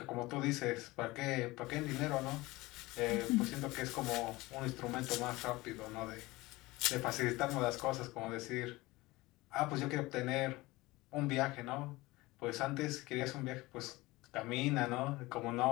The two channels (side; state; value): right; quieter; 20.6 dB